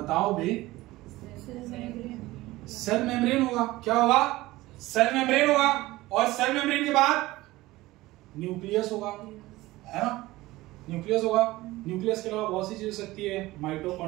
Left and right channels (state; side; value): quieter; left; 18.5 dB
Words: भाई, सेल मेम्ब्रेन होगा। क्या होगा, सेल मेम्ब्रेन होगा। और सेल मेम्ब्रेन के बाद न्यूक्लियस होगा, है ना, न्यूक्लियस होगा। न्यूक्लियस के अलावा बहुत सी चीजें हो सकती है,